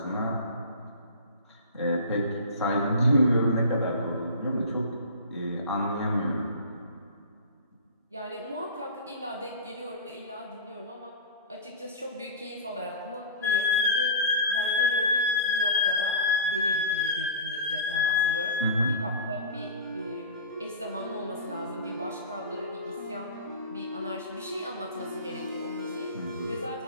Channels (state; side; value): inverted; both; correlation -0.34